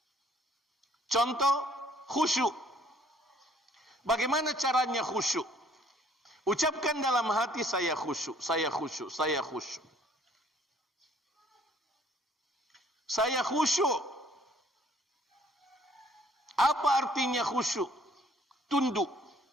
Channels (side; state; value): both; normal; correlation 0.60